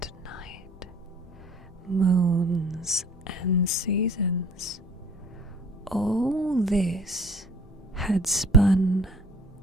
night, moons and seasons, all this had spun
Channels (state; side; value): normal; both; correlation 0.51